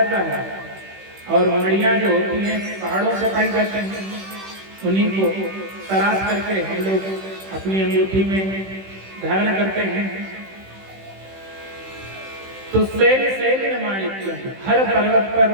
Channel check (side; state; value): left; late; 15 ms